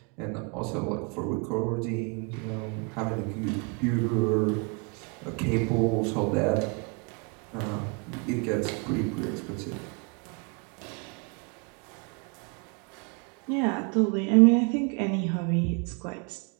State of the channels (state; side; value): quieter; left; 33.3 dB